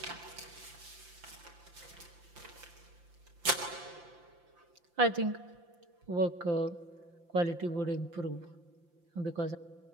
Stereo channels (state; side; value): late; left; 5.8 ms